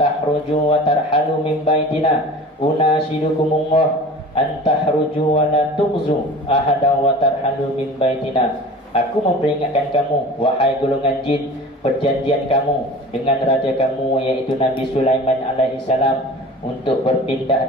wa tarhalu min baitina. Unashidukumullah antahruju wa la tughzu ahada wa tarhalu min baitina. Aku memperingatkan kamu, wahai golongan jin, perjanjian kamu dengan raja kamu iaitu Nabi Sulaiman alaihissalam untuk berpindah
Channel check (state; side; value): normal; both; correlation 0.39